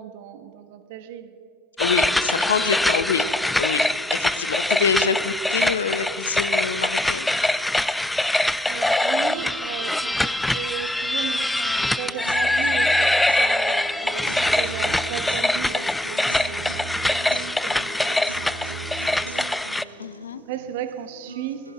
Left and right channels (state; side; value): normal; both; correlation 0.71